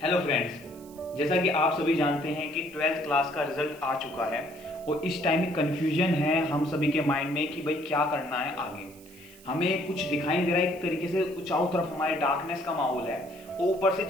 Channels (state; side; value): noise; right; hiss, 23 dB below the sound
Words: friends, जैसा कि आप सभी जानते हैं कि 12th क्लास का रिजल्ट आ चुका है और इस टाइम में कन्फ्यूजन है हम सभी के माइंड में कि भाई क्या करना है आगे। हमें कुछ दिखाई नहीं दे रहा है, एक तरीके से चारों तरफ हमारे डार्कनेस का माहौल है। ऊपर से